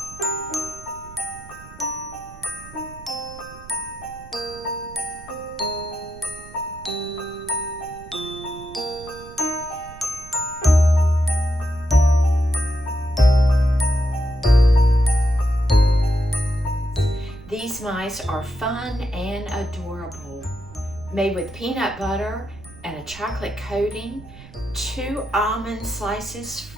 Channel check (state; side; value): noise; right; rumble, 18 dB below the sound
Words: These mice are fun and adorable. Made with peanut butter and a chocolate coating, 2 almond slices